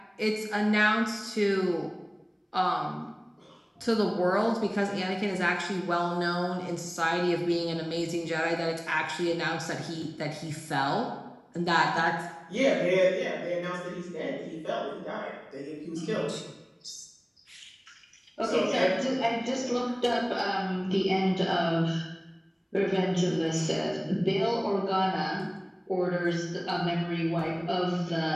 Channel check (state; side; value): identical; both; correlation 1.00